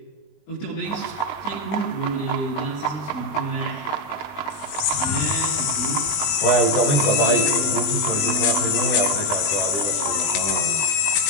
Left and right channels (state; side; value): late; right; 20 ms